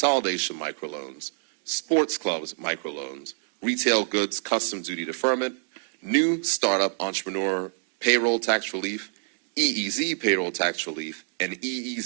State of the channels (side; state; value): left; silent; digital silence